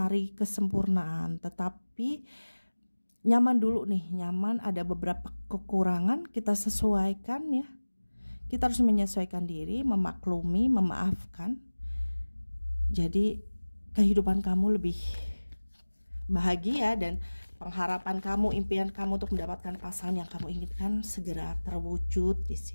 kesempurnaan, tetapi nyaman dulu nih, nyaman, ada beberapa kekurangan kita sesuaikan ya. Kita harus menyesuaikan diri, memaklumi, memaafkan. Jadi kehidupan kamu lebih bahagia dan pengharapan kamu, impian kamu untuk mendapatkan pasangan yang kamu inginkan segera terwujud di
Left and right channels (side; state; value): both; inverted; correlation -1.00